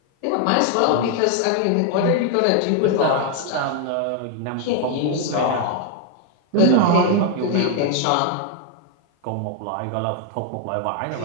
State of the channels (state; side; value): different; both; correlation 0.00